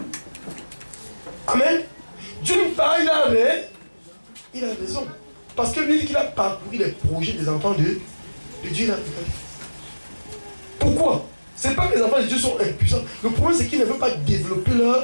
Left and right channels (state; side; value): inverted; both; correlation -1.00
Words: Amen. D'une part, il a raison. Parce que lui dit qu'il a parcouru les projets des enfants de Dieu. Pourquoi? Ce n'est pas que les enfants de Dieu sont impuissants. Le problème, c'est qu'ils ne veulent pas développer